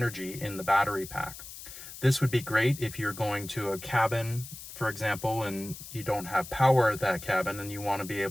in the battery pack. This would be great if you're going to a cabin, for example, and you don't have power at that cabin and you want to be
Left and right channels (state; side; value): noise; left; hiss, 13 dB below the sound